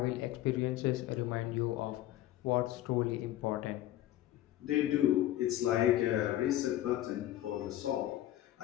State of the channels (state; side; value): quieter; right; 13.9 dB